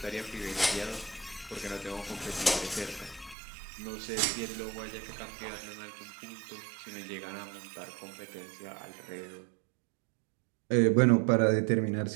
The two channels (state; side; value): drops out; left; at 3.4 s